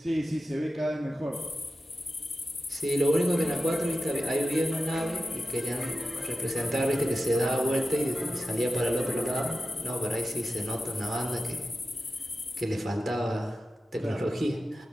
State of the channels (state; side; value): normal; both; correlation 0.92